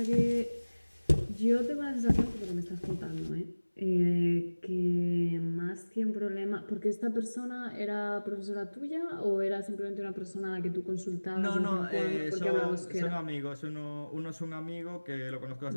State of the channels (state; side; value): inverted; both; correlation -1.00